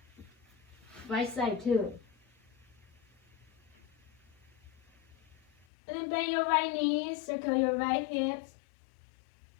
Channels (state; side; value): drops out; right; at 5.7 s